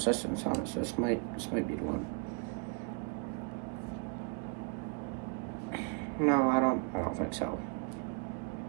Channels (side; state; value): left; quieter; 34.7 dB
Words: on it, so this might be the one. No, I don't think so.